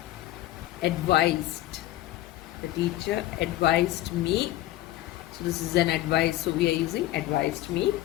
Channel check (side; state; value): right; quieter; 15.2 dB